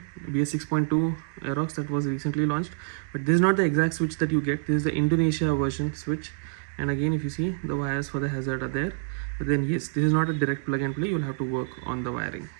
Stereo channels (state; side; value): silent; left; digital silence